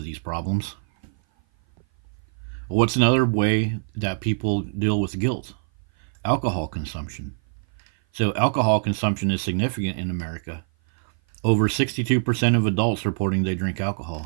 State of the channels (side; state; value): left; silent; 56 dB below the other